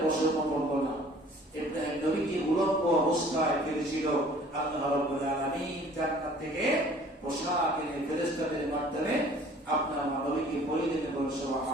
বছর করলো না। ইব্রাহিম নবীকে উলম্ব অবস্থায় ফেলেছিল। আল্লাহ রাব্বুল আলামিন জান্নাত থেকে পোশাক এনে ফেরেশতাদের মাধ্যমে আপনার নবীকে পরিয়ে দিতে বলেন।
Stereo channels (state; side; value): normal; both; correlation 0.52